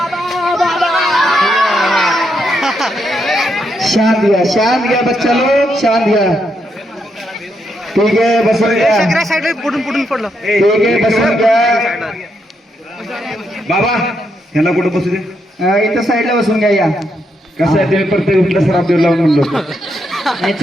शांत घ्या बच्चा लोग शांत घ्या ठीक आहे बसून घ्या पुढून पडलं ठीक आहे बसून घ्या बाबा ह्याला कुठं बसू दे इथं साईडला बसून घ्या या कसं आहे ते प्रत्येक कुठला सराफ देऊ लावून म्हणलो नाही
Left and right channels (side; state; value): both; normal; correlation 0.80